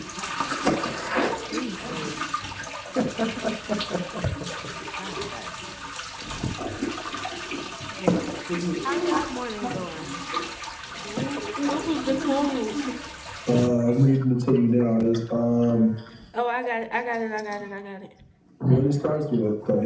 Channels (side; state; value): both; identical; correlation 1.00